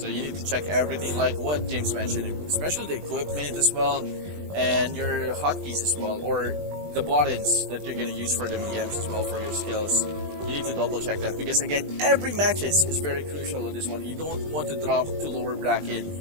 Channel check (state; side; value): late; left; 20 ms